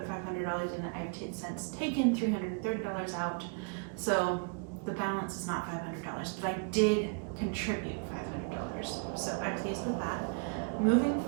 $500 in it. I've since taken $330 out. So the balance is not $500, but I did contribute $500. So I'm pleased with that. Moving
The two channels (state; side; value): quieter; left; 35.9 dB